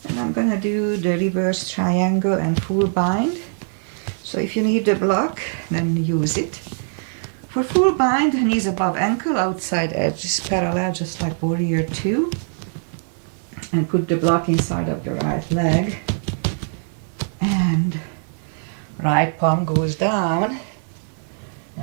And I'm gonna do the reverse triangle and full bind. So if you need the block, then use it. For full bind, knees above ankle, outside edge is parallel, just like warrior 2. And put the block inside of the right leg. And right palm goes down.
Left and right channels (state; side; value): silent; left; 57 dB below the other